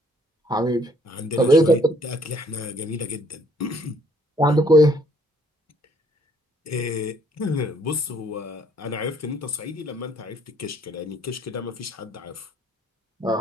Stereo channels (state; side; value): normal; both; correlation 0.63